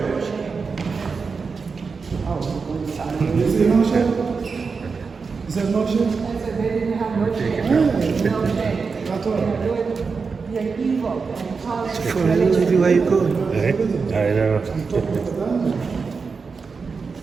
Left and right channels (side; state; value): left; quieter; 5.0 dB